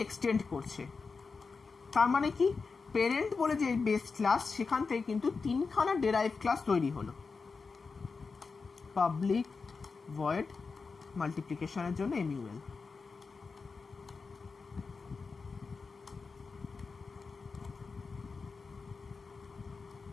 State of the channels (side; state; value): right; quieter; 4.7 dB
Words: এক্সটেন্ড করছে। তার মানে কি, প্যারেন্ট বলে যে বেস ক্লাস সেখান থেকে কিন্তু তিনখানা ডেরাইভ ক্লাস তৈরি হলো। পাবলিক ভয়েড মাল্টিপ্লিকেশনের জন্য এমইউএল,